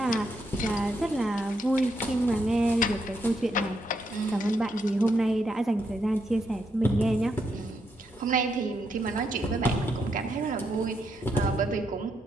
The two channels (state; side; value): normal; both; correlation 0.79